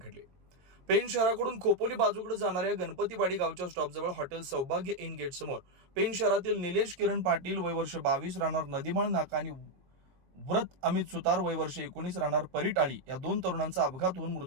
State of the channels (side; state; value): left; late; 22 ms